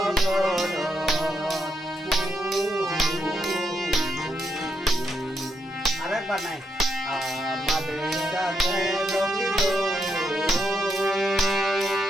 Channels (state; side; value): normal; both; correlation 0.80